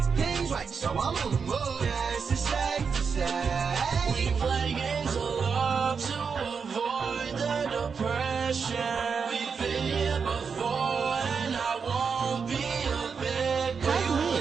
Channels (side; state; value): left; quieter; 5.8 dB